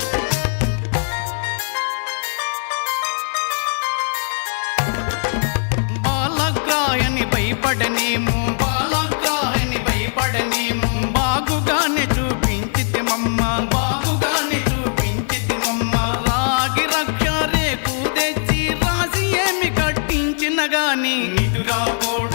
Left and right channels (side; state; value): right; silent; digital silence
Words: బాలగ్రాయని భయపడనేమో బాగుగానే చూపించితిమమ్మ రాగి రక్ష రేకు తెచ్చి రాసి ఏమి కట్టించిన గాని